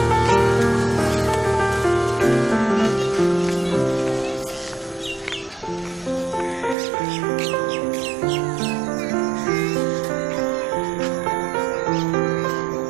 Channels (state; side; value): drops out; left; at 6.8 s